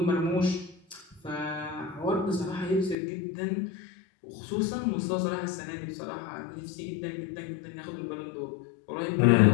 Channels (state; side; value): drops out; right; at 3.0 s